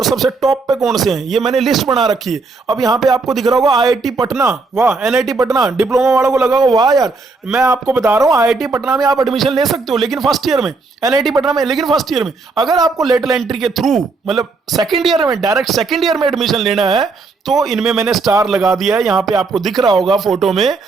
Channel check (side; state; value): left; quieter; 4.0 dB